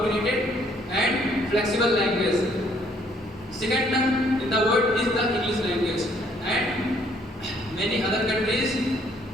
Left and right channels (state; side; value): normal; both; correlation 0.65